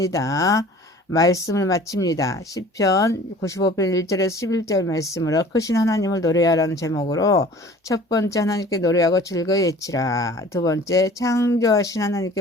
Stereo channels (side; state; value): both; normal; correlation 0.46